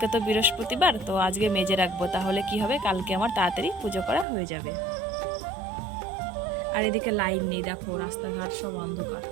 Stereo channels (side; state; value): left; drops out; at 4.2 s